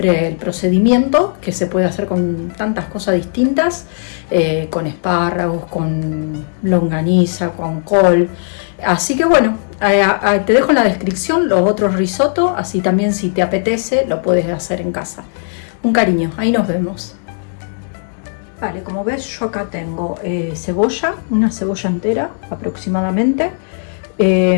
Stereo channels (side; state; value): right; silent; digital silence